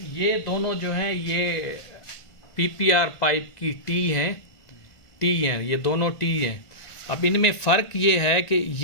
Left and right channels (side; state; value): right; late; 1.9 ms